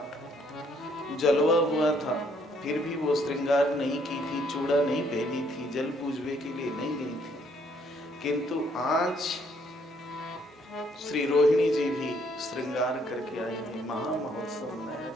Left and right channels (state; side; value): normal; both; correlation 0.67